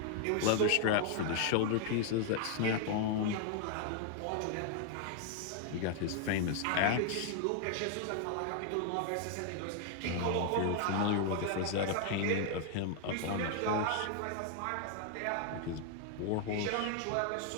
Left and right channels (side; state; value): both; different; correlation 0.00